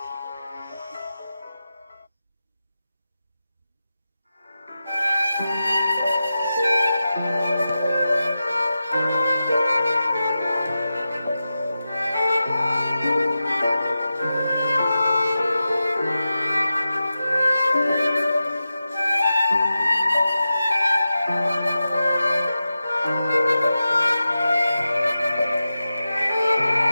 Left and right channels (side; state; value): both; inverted; correlation -0.92